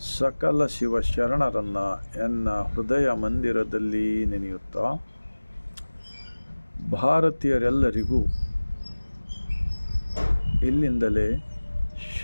ಸಕಲ ಶಿವಶರಣರನ್ನು ಎನ್ನ ಹೃದಯ ಮಂದಿರದಲ್ಲಿ ನೆನೆಯುತ್ತಾ, ಭಾರತೀಯರೆಲ್ಲರಿಗೂ ಇಲ್ಲಿಂದಲೇ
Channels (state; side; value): inverted; both; correlation -1.00